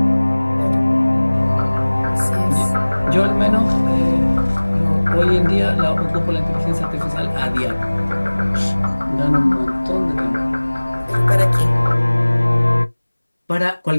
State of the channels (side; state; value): both; inverted; correlation -1.00